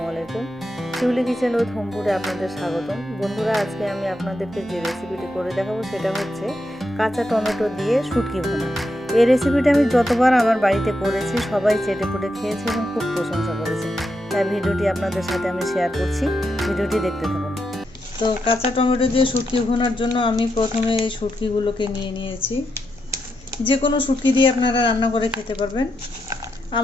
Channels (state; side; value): noise; right; hum, 26 dB below the sound